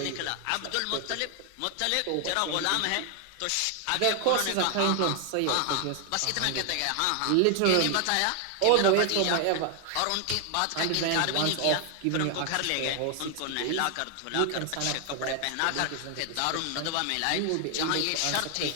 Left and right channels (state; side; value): different; both; correlation 0.00